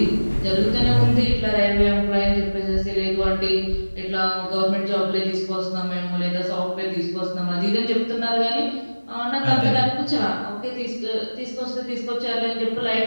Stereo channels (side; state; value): both; inverted; correlation -1.00